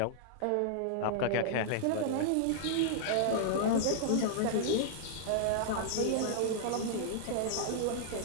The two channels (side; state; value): both; different; correlation -0.01